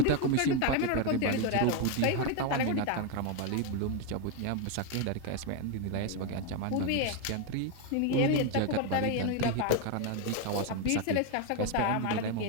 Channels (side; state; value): both; different; correlation 0.01